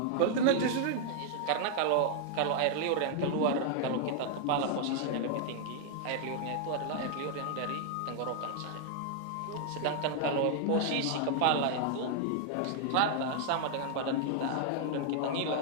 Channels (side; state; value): both; different; correlation 0.00